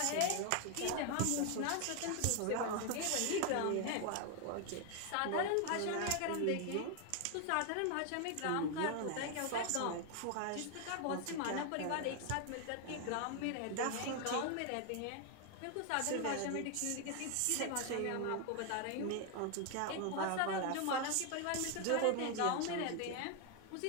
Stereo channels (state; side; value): different; both; correlation 0.01